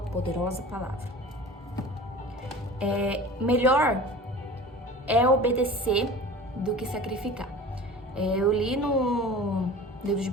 palavra. Melhor é obedecer do que sacrificar. Eu li no livro de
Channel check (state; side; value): normal; both; correlation 0.38